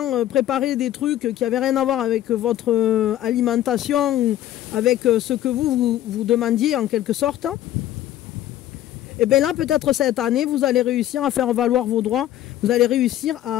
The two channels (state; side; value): quieter; right; 12.8 dB